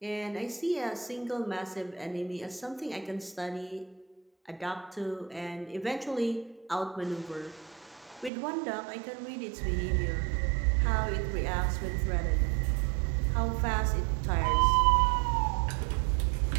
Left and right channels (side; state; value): left; drops out; at 8.3 s